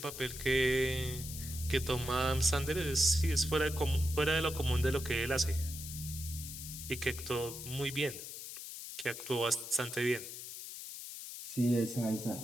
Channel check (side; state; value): left; noise; hiss, 9 dB below the sound